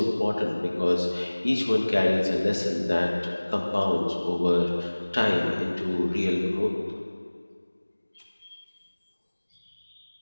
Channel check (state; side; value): inverted; both; correlation -1.00